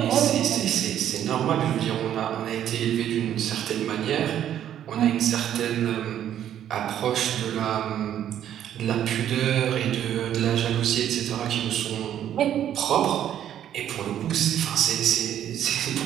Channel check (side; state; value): left; quieter; 10.6 dB